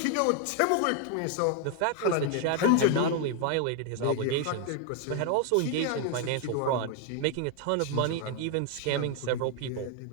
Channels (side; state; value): both; different; correlation 0.00